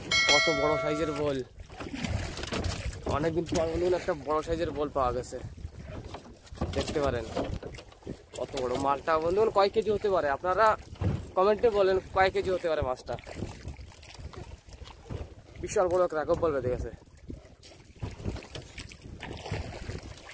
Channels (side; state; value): both; identical; correlation 1.00